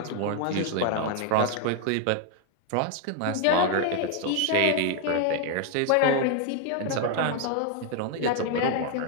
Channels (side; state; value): both; different; correlation 0.00